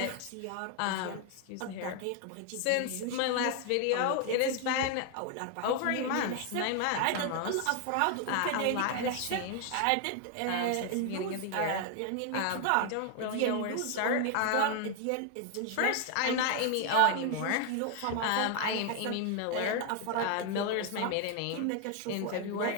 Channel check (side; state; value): both; different; correlation 0.00